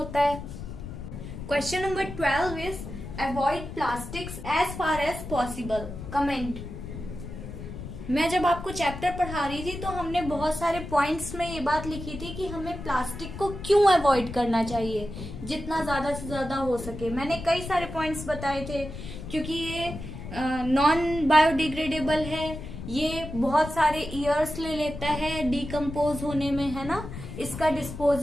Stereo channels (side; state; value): left; noise; rumble, 10 dB below the sound